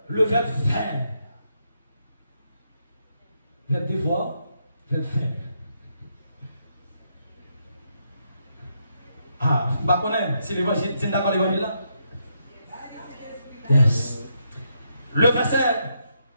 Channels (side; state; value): both; inverted; correlation -0.79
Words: Le verbe faire. Verbe devoir. Verbe faire. Ah, je ne connais pas si les voisins sont d'accord avec les là. Yes. Le verset